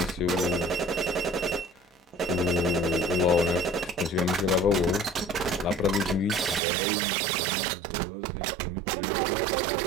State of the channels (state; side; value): drops out; left; at 6.6 s